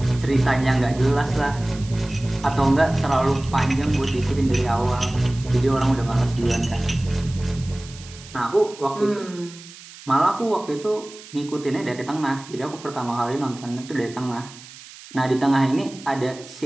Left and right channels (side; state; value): right; noise; hiss, 18 dB below the sound